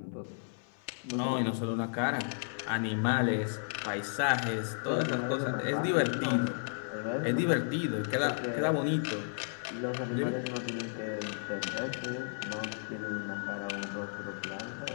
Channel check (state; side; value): silent; right; 56 dB below the other